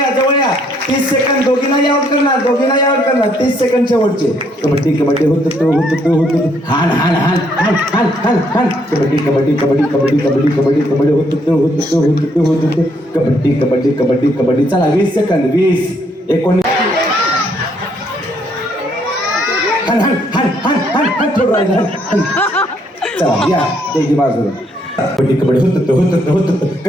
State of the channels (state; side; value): normal; both; correlation 0.70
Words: जवळ या. 30 सेकंद. दोघींनाही आउट करणार, दोघींनाही आउट करणार. 30 सेकंड शेवटचे. कबड्डी कबड्डी हान हान हान हान हान हान हान. कबड्डी कबड्डी कबड्डी कबड्डी कबड्डी कबड्डी कबड्डी कबड्डी कबड्डी कबड्डी कबड्डी. चला 20 सेकंद. 20 19. चला या त्याची बाजूला. कबड्डी कबड्डी होत